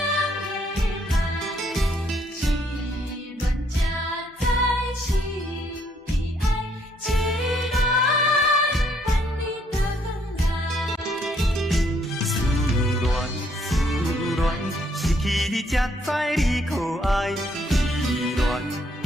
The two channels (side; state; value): both; normal; correlation 0.69